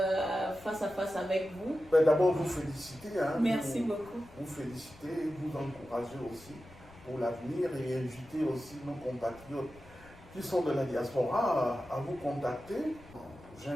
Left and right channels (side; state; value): left; noise; rumble, 22 dB below the sound